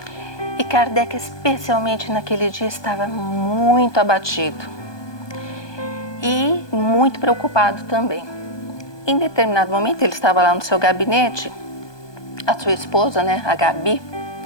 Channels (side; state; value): right; late; 1.2 ms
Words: E Kardec, especialmente naquele dia, estava muito abatido e muito preocupado também. Em determinado momento, ele estava lá no seu gabinete, a sua esposa, a Gabi,